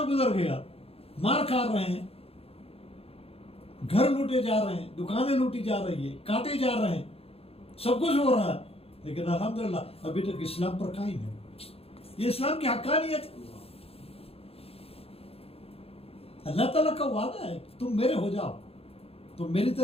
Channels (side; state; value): right; late; 0.28 ms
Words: گزر گیا، مار کھا رہے ہیں، گھر لوٹے جا رہے ہیں، دکانیں لوٹی جا رہی ہے، کاٹے جا رہے ہیں، سب کچھ ہو رہا ہے، لیکن الحمدللہ ابھی تک اسلام پر قائم ہے۔ یہ اسلام کی حقانیت، اللہ تعالیٰ کا وعدہ ہے، تم میرے ہو جاؤ، تم میری